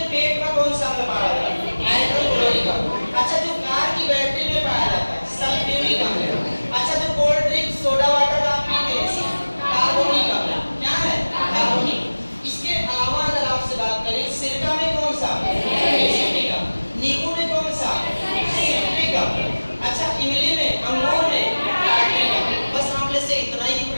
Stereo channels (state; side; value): inverted; both; correlation -1.00